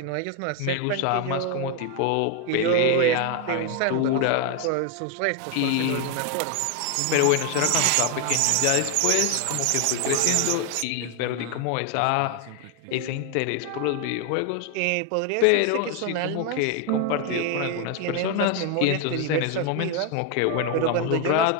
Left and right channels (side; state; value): both; different; correlation 0.01